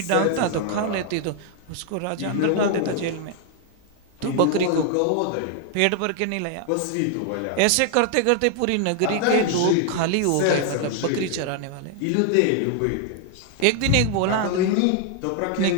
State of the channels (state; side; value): different; both; correlation 0.00